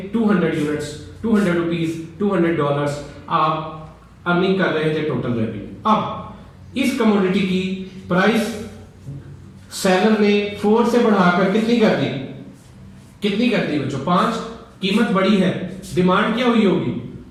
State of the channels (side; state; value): both; identical; correlation 1.00